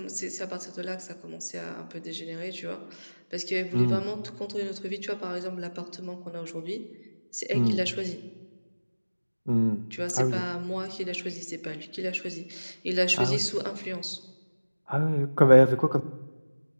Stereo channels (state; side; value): inverted; both; correlation -1.00